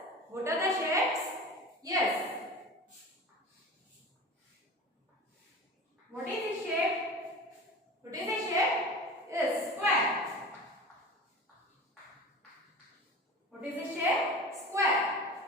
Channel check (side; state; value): both; normal; correlation 0.35